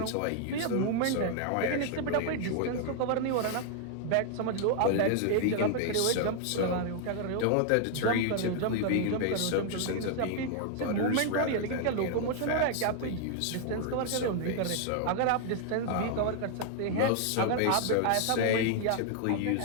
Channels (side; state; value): both; different; correlation 0.00